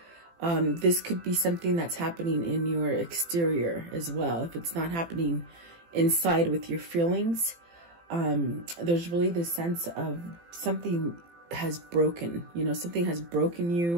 This could be something that's happening in your exterior as well. If it's not happening inside with your feelings, there's really this sense of something has broken, you know, something has broken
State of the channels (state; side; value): late; left; 18 ms